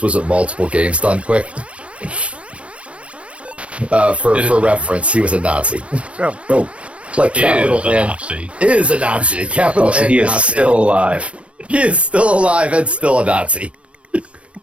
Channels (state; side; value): late; left; 0.061 ms